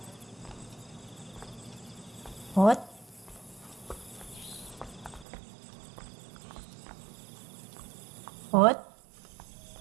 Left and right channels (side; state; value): left; drops out; at 5.2 s